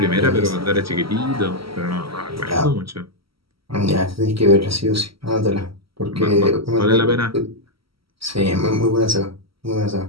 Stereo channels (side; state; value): left; late; 0.75 ms